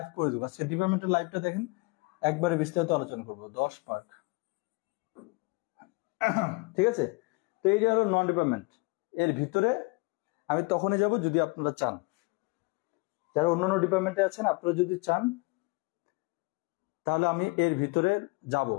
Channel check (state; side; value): quieter; right; 27.9 dB